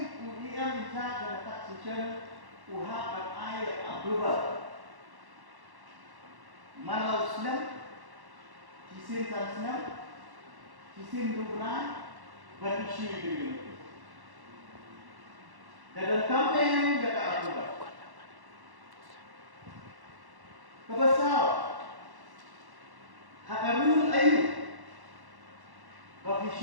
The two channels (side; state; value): left; late; 1.1 ms